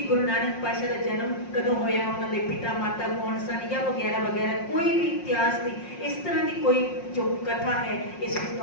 गुरु नानक पातशाह का जन्म कदों होया, उन्होंने पिता माता कौन सन या वगैरह वगैरह, कोई भी इतिहास की इस तरह की कोई जो कथा है इस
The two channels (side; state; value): right; late; 5.6 ms